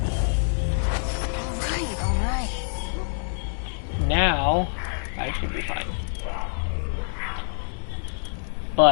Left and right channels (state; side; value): silent; right; digital silence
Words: All right. Now, I should be fine.